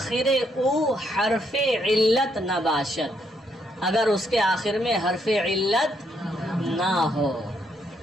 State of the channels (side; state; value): both; normal; correlation 0.74